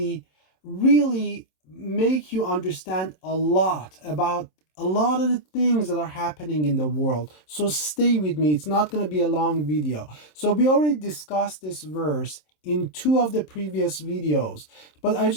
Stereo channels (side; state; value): right; late; 27 ms